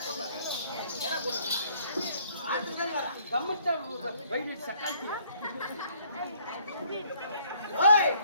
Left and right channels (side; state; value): both; inverted; correlation -0.62